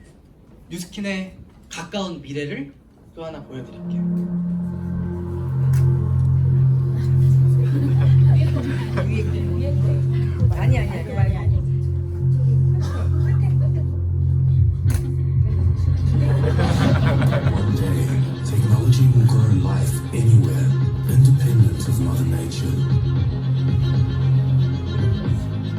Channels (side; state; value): both; identical; correlation 1.00